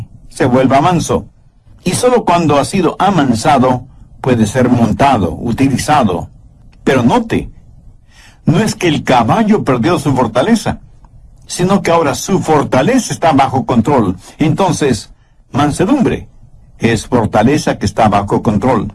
se vuelva manso. Y solo cuando ha sido amansado puede ser montado, utilizado. Pero note, no es que el caballo perdió su fortaleza, sino que ahora su fortaleza está bajo control. Entonces, mansedumbre es fortaleza que está bajo control.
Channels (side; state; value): both; identical; correlation 1.00